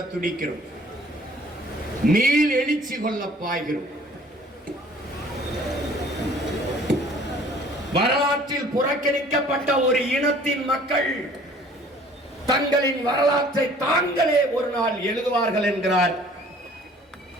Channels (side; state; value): both; normal; correlation 0.53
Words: துடிக்கிறோம், மீள் எழுச்சி கொள்ள பாய்கிறோம். வரலாற்றில் புறக்கணிக்கப்பட்ட ஒரு இனத்தின் மக்கள் தங்களின் வரலாற்றை தாங்களே ஒரு நாள் எழுதுவார்கள் என்கிறார்